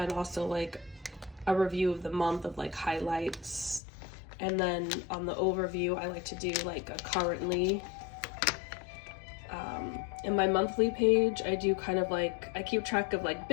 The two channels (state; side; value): drops out; right; at 3.8 s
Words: also like a review of the month of like highlights. And then on the overview, I like to do like a currently. In my monthly page, I do kind of like, I keep track of like